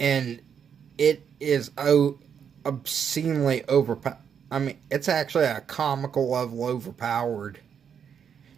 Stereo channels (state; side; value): quieter; left; 7.6 dB